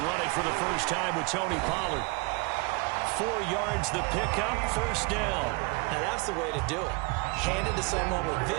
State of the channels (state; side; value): quieter; left; 27.9 dB